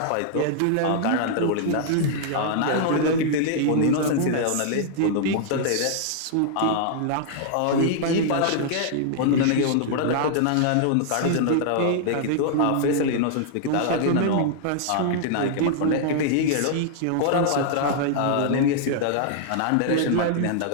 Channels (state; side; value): different; both; correlation -0.01